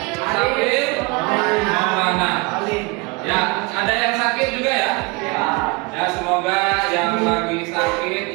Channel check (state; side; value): quieter; left; 27.0 dB